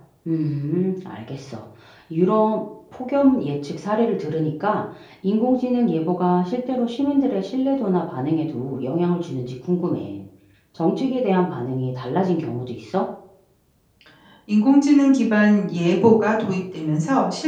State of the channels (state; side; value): identical; both; correlation 1.00